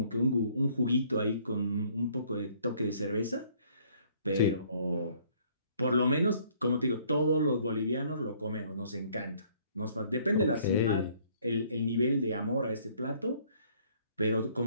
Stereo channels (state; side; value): inverted; both; correlation -0.61